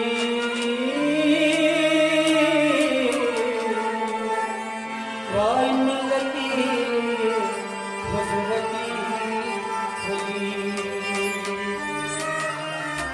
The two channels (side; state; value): both; identical; correlation 1.00